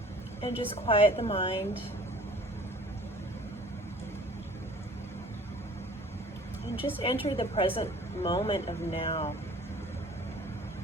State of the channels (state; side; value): normal; both; correlation 0.49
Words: And just quiet the mind. And just enter the present moment of now.